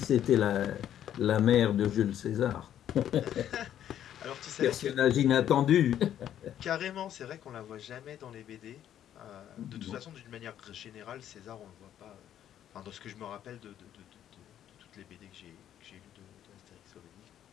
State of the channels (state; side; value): quieter; right; 10.7 dB